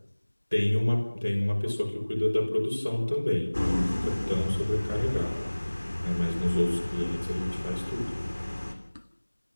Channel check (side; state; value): both; inverted; correlation -1.00